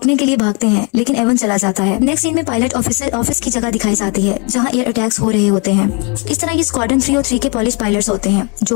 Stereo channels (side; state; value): right; quieter; 32.5 dB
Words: के लिए भागते हैं, लेकिन एवन चला जाता है। नेक्स्ट सीन में पायलट ऑफिसर ऑफिस की जगह दिखाई जाती है जहाँ एयर अटैक्स हो रहे होते हैं। इस तरह ये स्क्वाड्रन 3 और 3 के पॉलिश पायलट्स होते हैं